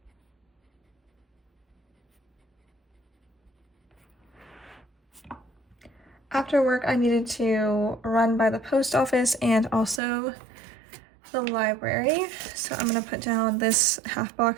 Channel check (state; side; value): drops out; left; at 10.0 s